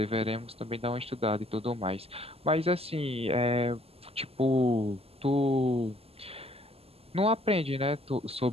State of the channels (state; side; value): late; left; 0.29 ms